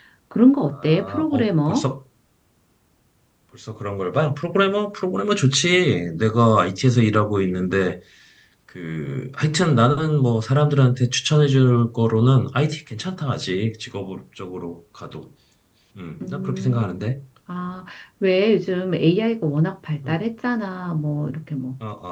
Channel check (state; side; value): identical; both; correlation 1.00